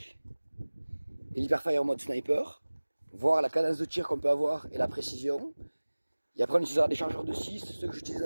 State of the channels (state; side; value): inverted; both; correlation -1.00